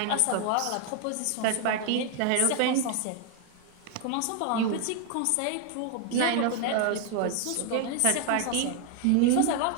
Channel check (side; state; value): both; different; correlation 0.01